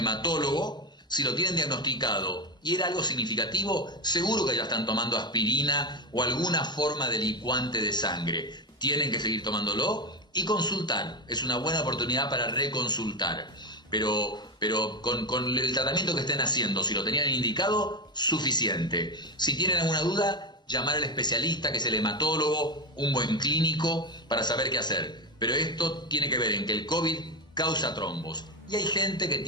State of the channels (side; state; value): both; normal; correlation 0.16